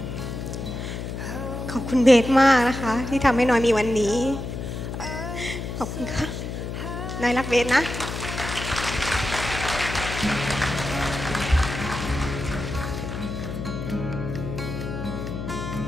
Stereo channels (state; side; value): noise; left; hum, 6 dB below the sound